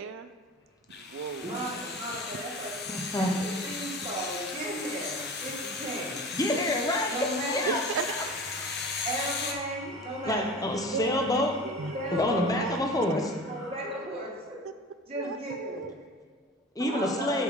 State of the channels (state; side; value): normal; both; correlation 0.37